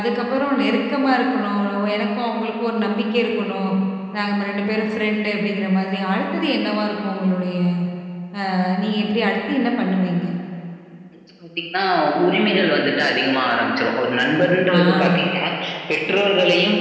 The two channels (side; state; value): both; identical; correlation 1.00